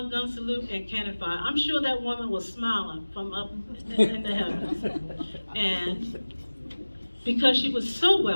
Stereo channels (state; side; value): inverted; both; correlation -1.00